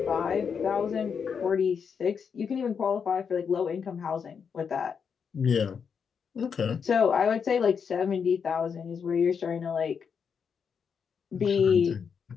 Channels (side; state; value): right; quieter; 6.5 dB